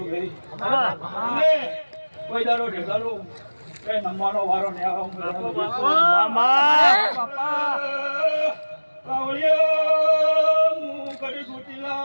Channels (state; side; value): inverted; both; correlation -1.00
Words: ગઈ કોઈ દાડો ઢેગાલો એ નમવાનો વારો ને